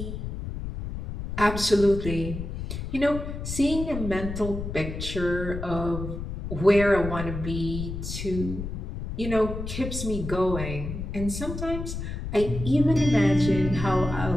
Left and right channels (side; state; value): left; noise; rumble, 6 dB below the sound